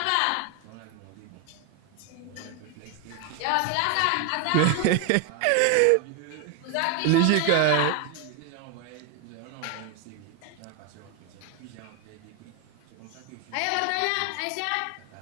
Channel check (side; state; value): both; different; correlation 0.01